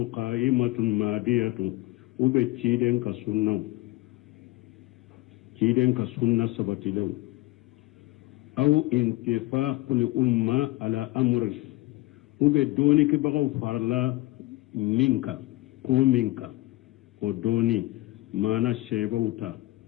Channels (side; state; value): right; quieter; 19.2 dB